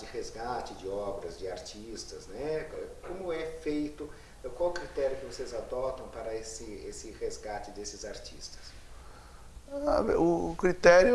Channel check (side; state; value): both; identical; correlation 1.00